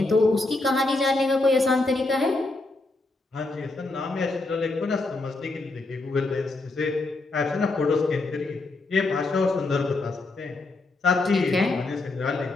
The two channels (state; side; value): quieter; right; 3.2 dB